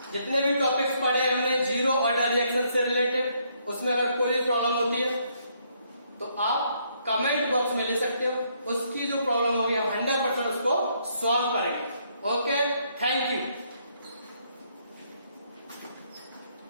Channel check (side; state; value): both; inverted; correlation -0.71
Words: जितने भी टॉपिक्स पढ़े हमने जीरो ऑर्डर रिएक्शन से रिलेटेड, उसमें अगर कोई प्रॉब्लम होती है तो आप कमेंट बॉक्स में ले सकते हो, उसकी जो प्रॉब्लम होगी हम 100% उसको सॉल्व करेंगे। Okay, thank you.